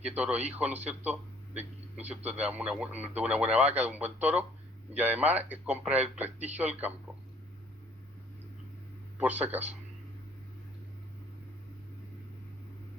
toro hijo, ¿no es cierto?, ¿no es cierto?, de una buena vaca, de un buen toro, y además compra el prestigio del campo, por si acaso.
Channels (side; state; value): both; normal; correlation 0.58